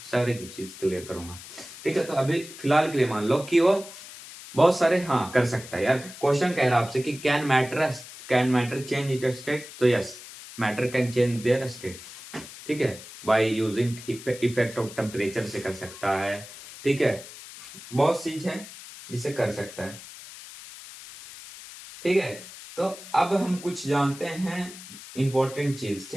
सारे की चीज क्लियर करूंगा। ठीक है, तो अभी फिलहाल के लिए मान लो कि वो बहुत सारे हाँ कर सकता है यार। क्वेश्चन कह रहा है आपसे कि can matter change it state, तो yes, matter can change their state. ठीक है, by using effect of temperature से कर सकता है। ठीक है, बहुत चीज है जिसे कर सकता है। ठीक है, तो अब हम कुछ जानते हैं इंपॉर्टेंट चीज।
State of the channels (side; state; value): left; noise; hiss, 15 dB below the sound